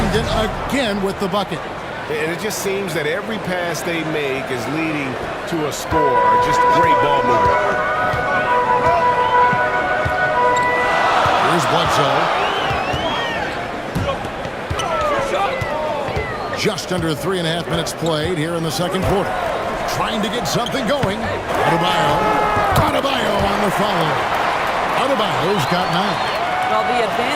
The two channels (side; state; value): both; identical; correlation 1.00